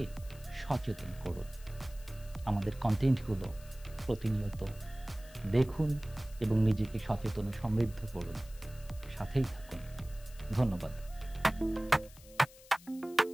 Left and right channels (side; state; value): left; noise; hiss, 21 dB below the sound